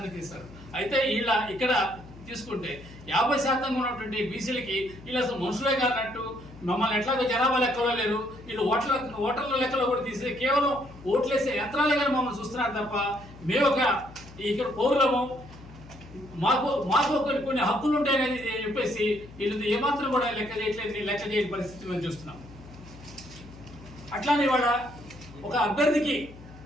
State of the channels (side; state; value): left; noise; hum, 18 dB below the sound